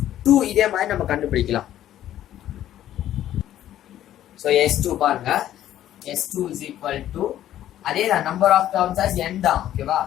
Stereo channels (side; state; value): right; quieter; 12.2 dB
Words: இதே மாதிரி நம்ம கண்டுபிடிக்கலாம் so s2 பாருங்க s2 is equal to அதே தான் number of terms as n தான் ஓகேவா